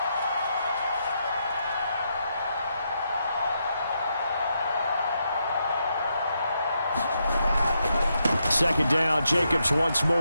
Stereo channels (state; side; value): inverted; both; correlation -0.81